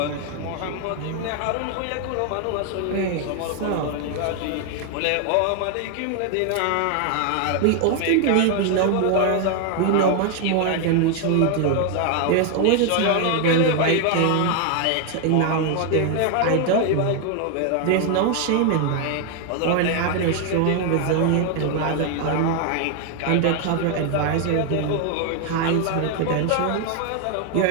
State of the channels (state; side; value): different; both; correlation 0.01